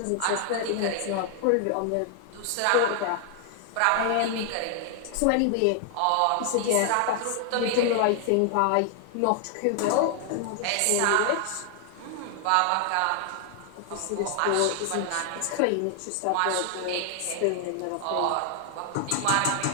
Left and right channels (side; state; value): both; different; correlation 0.00